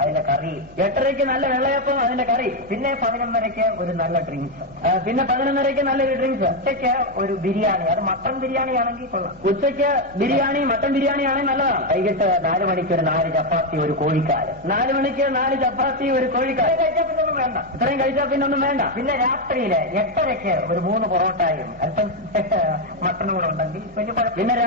അതിന്റെ കറി. 8:30 നല്ല വെള്ളയപ്പം അതിന്റെ കറി. പിന്നെ 11:30 ഒരു നല്ല ഡ്രിങ്ക്സ്. പിന്നെ 11:30 നല്ലൊരു ഡ്രിങ്ക്സ്. ഉച്ചയ്ക്ക് ഒരു ബിരിയാണി, അത് മട്ടൺ ബിരിയാണി ആണെങ്കിൽ കൊള്ളാം. ഉച്ചയ്ക്ക് ബിരിയാണി, മട്ടൺ ബിരിയാണി ആണെങ്കിൽ നല്ലതാണ്. വൈകിട്ട് 4 മണിക്ക് ഒരു 4 ചപ്പാത്തി, ഒരു കോഴിക്കാല്. 4 മണിക്ക് 4 ചപ്പാത്തി, ഒരു കോഴിക്കാല്. കഴിച്ചാൽ പിന്നെ ഒന്നും വേണ്ട. ഇത്രയും കഴിച്ചാൽ പിന്നെ ഒന്നും വേണ്ട. പിന്നെ രാത്രിയില് 8:30 ഒരു 3 പൊറോട്ടയും അല്പം മട്ടനും കൂടെ ഉണ്ടെങ്കിൽ വലിയ കുഴപ്പം. പിന്നെ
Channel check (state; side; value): normal; both; correlation 0.05